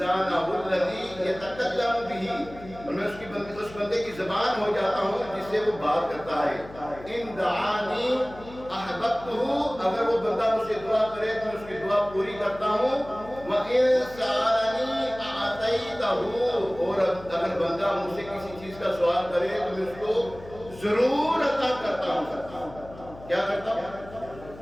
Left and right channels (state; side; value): noise; left; hum, 18 dB below the sound